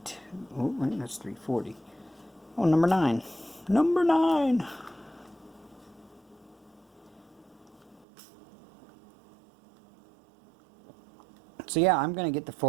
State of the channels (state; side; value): drops out; left; at 8.1 s